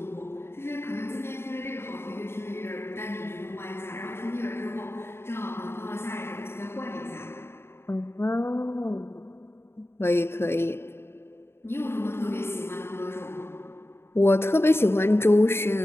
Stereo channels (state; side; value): late; right; 0.12 ms